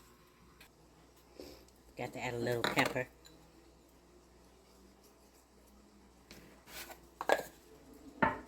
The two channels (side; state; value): both; identical; correlation 1.00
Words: Got to add a little pepper.